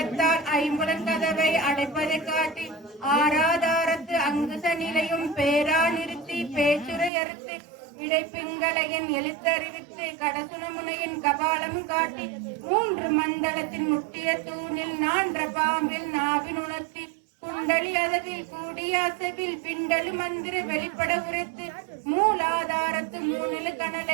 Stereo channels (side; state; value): left; drops out; at 7.1 s